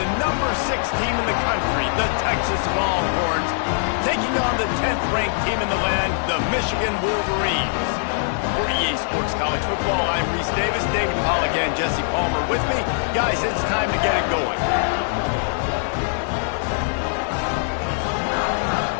number 6 team in the country, the Texas Longhorns, taking on the 10th-ranked team in the land, the Michigan Wolverines. For EA Sports College Football, I'm Reese Davis, David Pollack, and Jesse Palmer with me. Guys, it's time to get it going.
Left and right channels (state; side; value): silent; right; digital silence